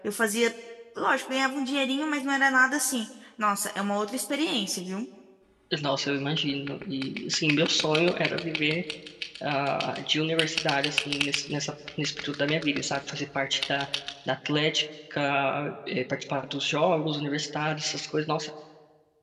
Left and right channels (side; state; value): both; identical; correlation 1.00